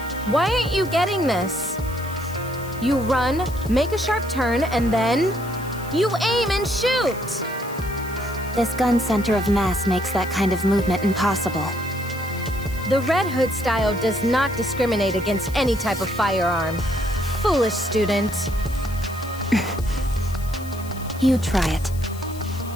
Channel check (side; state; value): left; noise; hiss, 18 dB below the sound